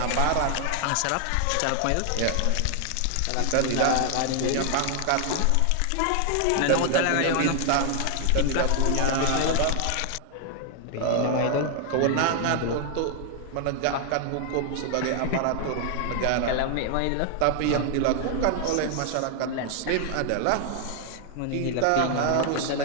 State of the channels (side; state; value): both; different; correlation 0.00